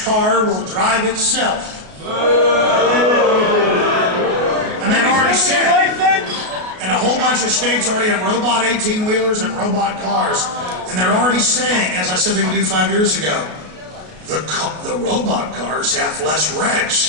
car will drive itself. And they've already said, and a whole bunch of states already have robot 18-wheelers and robot cars. And they're already saying, as I said they would do 5 years ago, the robot cars have less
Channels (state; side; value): late; left; 33 ms